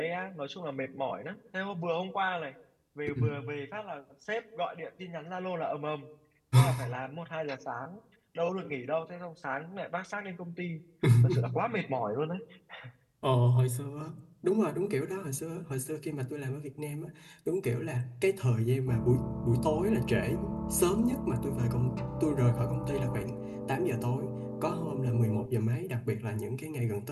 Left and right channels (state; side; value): identical; both; correlation 1.00